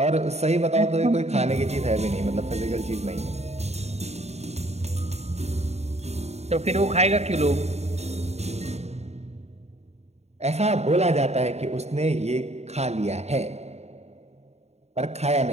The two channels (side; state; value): left; late; 0.31 ms